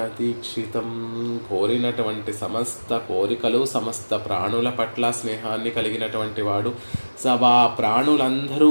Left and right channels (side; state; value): both; inverted; correlation -1.00